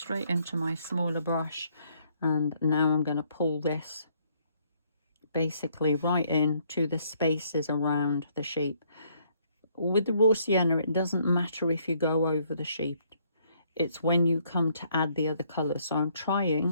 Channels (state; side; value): inverted; both; correlation -0.68